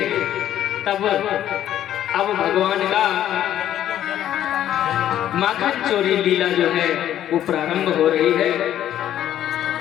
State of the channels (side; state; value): right; quieter; 11.5 dB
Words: तब अब भगवान का माखन चोरी लीला जो है वो प्रारंभ हो रही है।